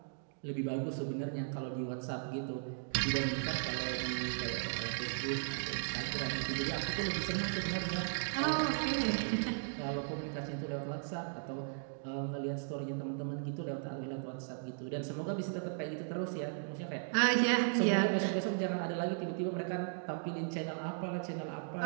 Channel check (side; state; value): left; silent; digital silence